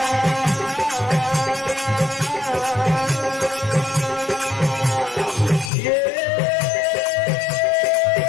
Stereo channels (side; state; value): right; drops out; at 5.7 s